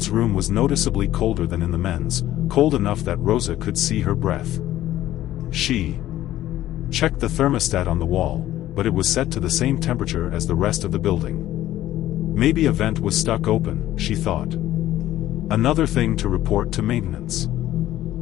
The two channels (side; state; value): right; quieter; 13.9 dB